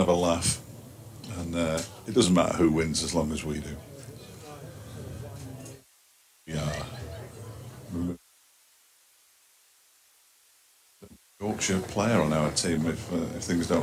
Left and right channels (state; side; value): identical; both; correlation 1.00